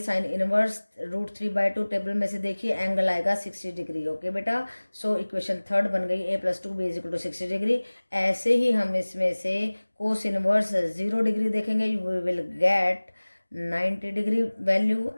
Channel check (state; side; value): inverted; both; correlation -1.00